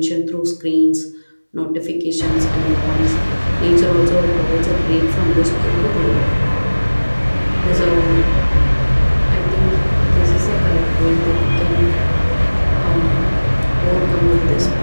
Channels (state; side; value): inverted; both; correlation -1.00